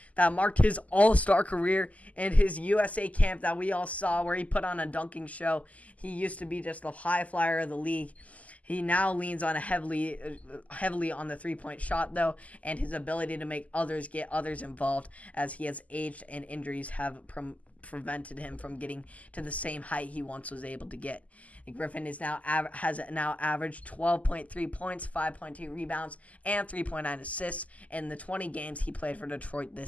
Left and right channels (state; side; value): late; right; 0.072 ms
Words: that marked his all-star career and his USA camp that we all saw where he put on a dunking show. He used to be just the high flyer of the league. He now leans on heavily on the three-point shot, though, and his ability to make others get others involved as he has aged and injuries have prevented him from getting to the same height he once was able to get. Griffin has now averaged 12.3 points, 5.2 rebounds, and 3.9 assists in the 20 games he played for Detroit